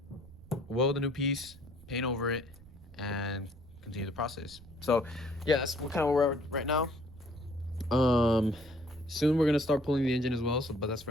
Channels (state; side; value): noise; right; rumble, 21 dB below the sound